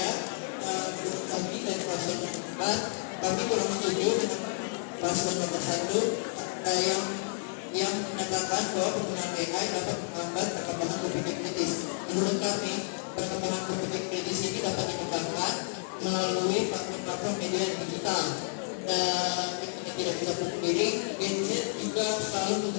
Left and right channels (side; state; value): right; silent; 57 dB below the other